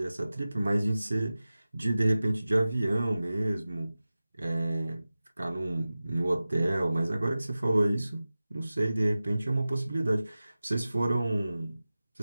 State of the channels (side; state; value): both; inverted; correlation -0.96